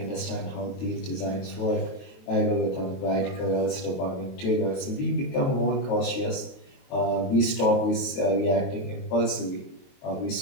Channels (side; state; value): right; late; 22 ms